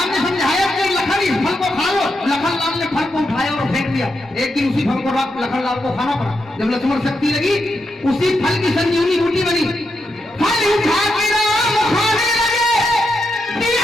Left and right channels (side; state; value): both; normal; correlation 0.84